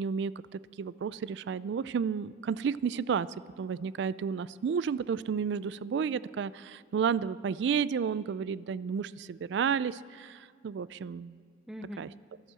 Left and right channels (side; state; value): left; quieter; 6.3 dB